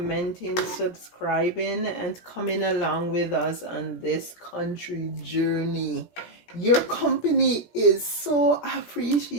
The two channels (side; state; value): right; late; 17 ms